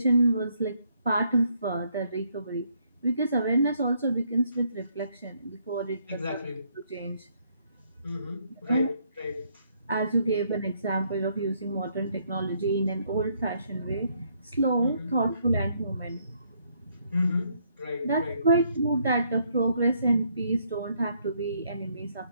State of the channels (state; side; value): inverted; both; correlation -0.70